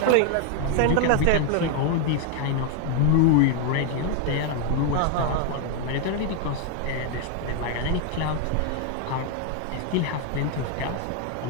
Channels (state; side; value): different; both; correlation 0.01